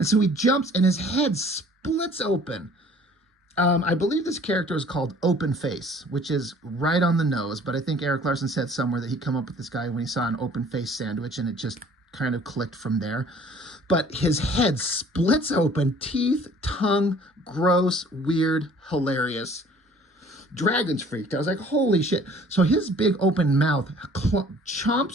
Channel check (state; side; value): normal; both; correlation 0.53